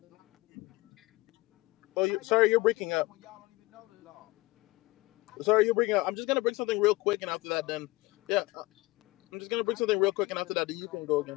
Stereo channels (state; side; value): quieter; right; 21.1 dB